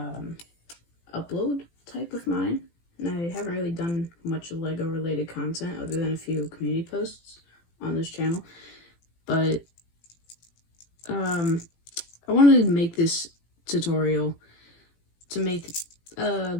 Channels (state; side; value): late; right; 18 ms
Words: upload type of mine, and I haven't really done much Lego related content other than a few community posts on this channel, but I wanted to make this tutorial to make a